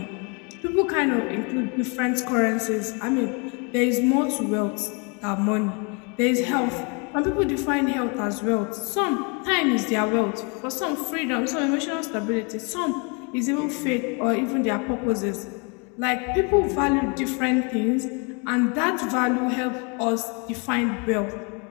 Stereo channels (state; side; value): quieter; right; 33.0 dB